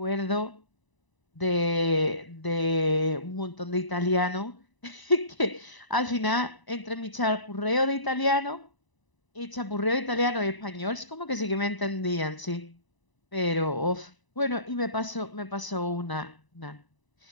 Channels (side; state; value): right; late; 1.0 ms